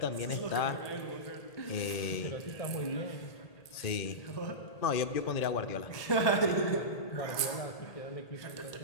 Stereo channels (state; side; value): late; right; 1.8 ms